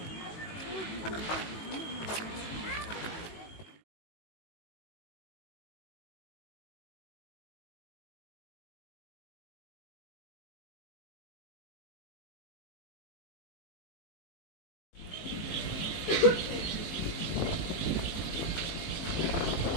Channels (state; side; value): late; right; 18 ms